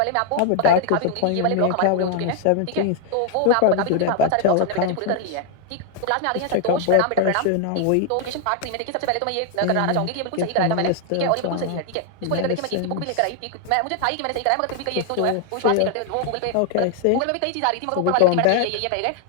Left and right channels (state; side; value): different; both; correlation 0.00